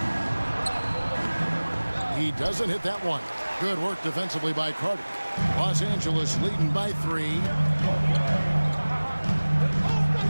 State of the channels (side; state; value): both; inverted; correlation -1.00